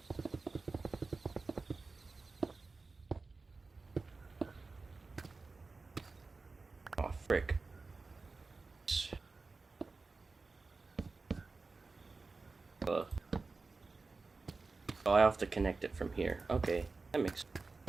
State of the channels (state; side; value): quieter; left; 3.9 dB